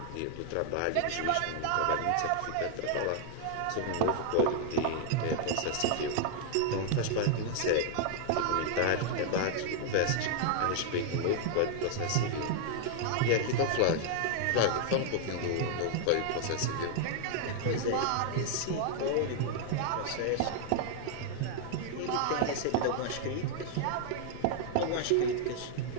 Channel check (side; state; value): both; different; correlation 0.00